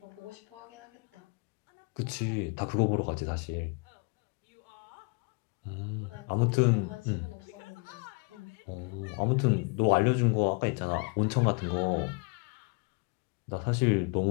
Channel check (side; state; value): right; quieter; 33.1 dB